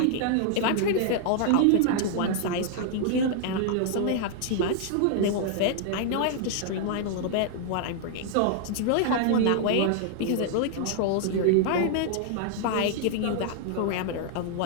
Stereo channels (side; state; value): both; different; correlation -0.01